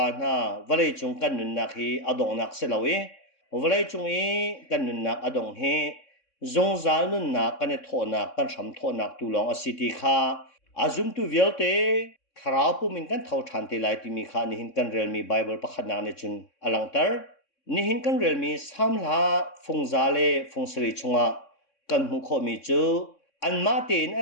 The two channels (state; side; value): late; right; 3.6 ms